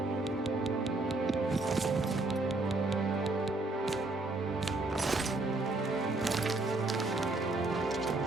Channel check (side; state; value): left; quieter; 3.0 dB